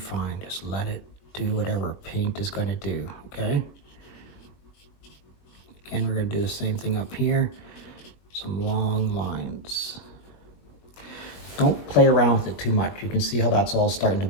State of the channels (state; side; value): late; right; 21 ms